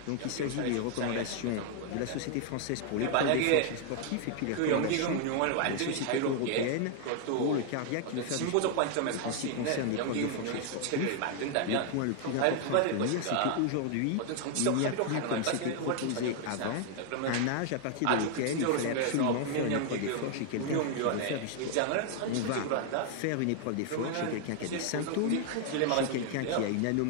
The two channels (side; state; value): both; different; correlation 0.00